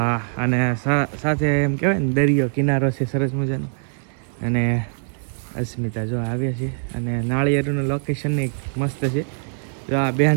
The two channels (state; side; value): silent; left; digital silence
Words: અને સાથે એમ કહેવાય ને દરિયો કિનારો છે સરસ મજાનો. અને અસ્મિતા જો આવ્યા છે અને નાળિયેરનું લોકેશન મસ્ત છે. જો આ